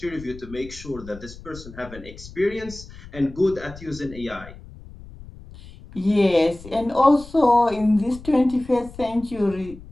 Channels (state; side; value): noise; left; rumble, 17 dB below the sound